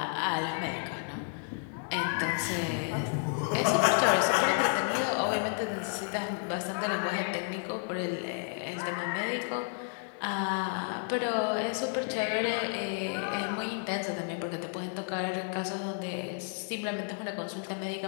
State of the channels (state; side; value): silent; right; 55 dB below the other